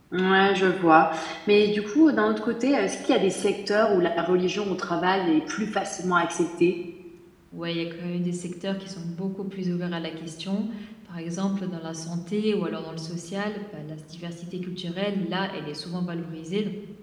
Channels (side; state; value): both; identical; correlation 1.00